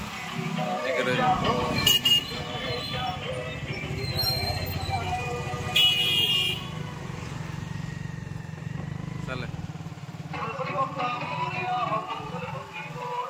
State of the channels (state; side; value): identical; both; correlation 1.00